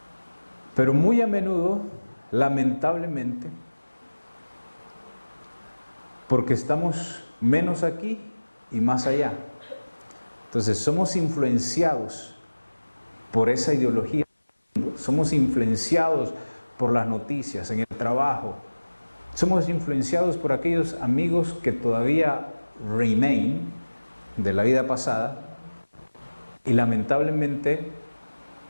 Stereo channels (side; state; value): both; inverted; correlation -1.00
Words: Pero muy a menudo, lamentablemente, porque estamos menos aquí y más allá. Entonces somos influenciados por esa ideología, somos influenciados por las noticias, en el trabajo, somos influenciados por aquellos amigos que todavía remain de la vida pasada, y lamentablemente